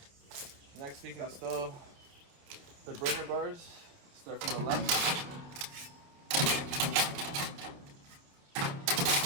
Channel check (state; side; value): late; left; 28 ms